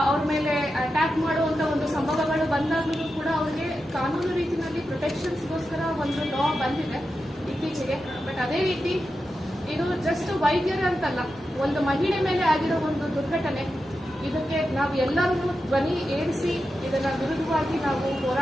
ಅವ್ರ ಮೇಲೆ ಅಟ್ಯಾಕ್ ಮಾಡುವಂತ ಒಂದು ಸಂಭವಗಳು ಬಂದಾಗಲೂ ಕೂಡ ಅವ್ರಿಗೆ ಕಾನೂನು ರೀತಿಯಲ್ಲಿ ಪ್ರೊಟೆಕ್ಷನ್ಸ್ಗೋಸ್ಕರ ಒಂದು ಲಾ ಬಂದಿದೆ ಇತ್ತೀಚೆಗೆ. ಬಟ್ ಅದೇ ರೀತಿ ಇದು ಜಸ್ಟ್ ವೈದ್ಯರೇ ಅಂತಲ್ಲ, ಒಂದು ಮಹಿಳೆ ಮೇಲೆ ಆಗಿರೋ ಒಂದು ದುರ್ಘಟನೆ. ಇದಕ್ಕೆ ನಾವು ಎಲ್ಲರೂ ಧ್ವನಿ ಏರಿಸಿ ಇದನ್ನ ವಿರುದ್ಧವಾಗಿ ನಾವು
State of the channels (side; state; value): both; normal; correlation 0.90